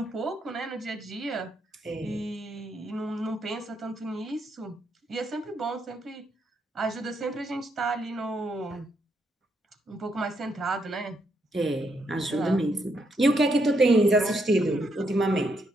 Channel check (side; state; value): both; normal; correlation 0.77